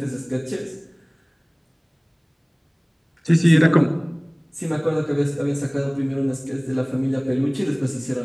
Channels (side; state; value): both; identical; correlation 1.00